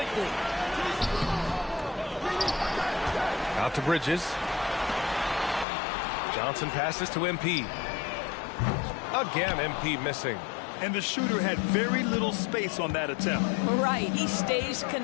Out to Bridges. Johnson passes to MP. Again, MP missing. And the shooter had very little space on that attempt. Right, he stays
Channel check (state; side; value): drops out; right; at 5.7 s